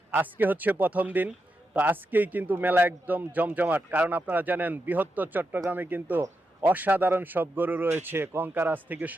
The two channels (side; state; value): both; normal; correlation 0.87